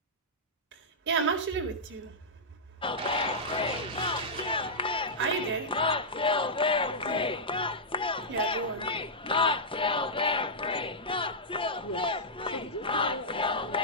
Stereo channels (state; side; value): normal; both; correlation -0.10